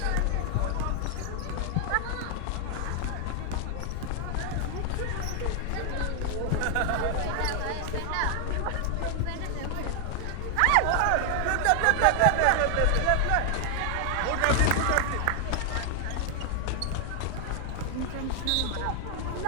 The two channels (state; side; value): different; both; correlation 0.00